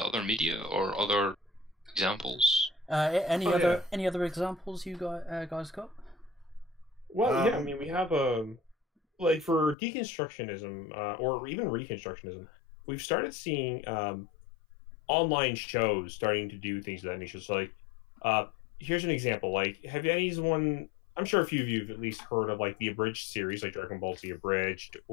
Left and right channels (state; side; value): drops out; right; at 9.8 s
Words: other media or other examples? Any other examples you guys got? Well, yeah. I mean, we have like for deconstructionism or even reconstructionism, we've started seeing online shows starting to do things of that nature. So, like, here's an example. Like, have anyone? I'm sure a few of you have at least heard of like the abridged series, like Dragon Ball Z abridged,